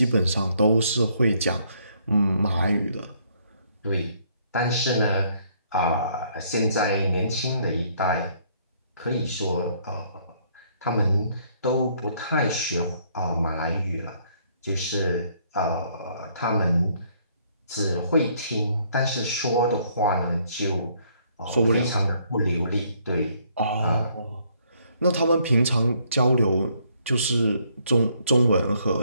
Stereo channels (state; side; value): inverted; both; correlation -0.66